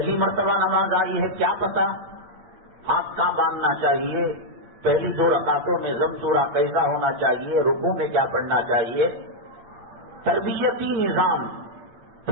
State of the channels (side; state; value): left; late; 8.6 ms